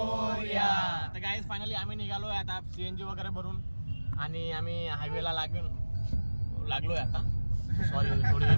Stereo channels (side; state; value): both; inverted; correlation -1.00